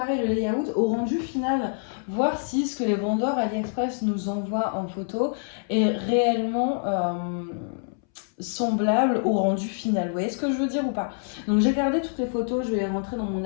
le layout au rendu final, voir si ce que les vendeurs AliExpress nous envoient en photo est réellement semblable au rendu final. Vous voyez ce que je veux dire ou pas? Donc j'ai gardé toutes les photos, je vais les rentrer dans mon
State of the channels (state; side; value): silent; right; 61 dB below the other